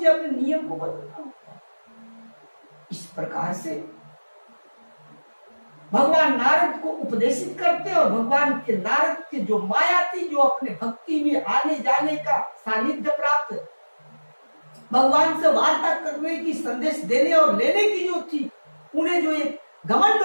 अपने नियम को बदलना होगा। इस प्रकार से भगवान नारद को उपदेशित करते और भगवान के नारद के जो माया थी, जो अपने भक्ति में आने जाने का सानिध्य प्राप्त, भगवान से वार्ता करने की, संदेश देने और लेने की जो थी, उन्हें जो एक घमंड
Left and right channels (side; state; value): both; inverted; correlation -1.00